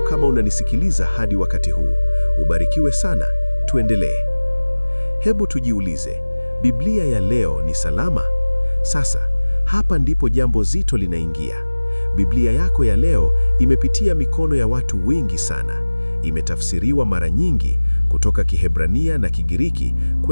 kama unanisikiliza hadi wakati huu. Ubarikiwe sana. Tuendelee. Hebu tujiulize, Biblia ya leo ni salama? Sasa, hapa ndipo jambo zito linaingia. Biblia yako ya leo imepitia mikono ya watu wengi sana. Imetafsiriwa mara nyingi kutoka Kiebrania na Kigiriki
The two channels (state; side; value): inverted; both; correlation -1.00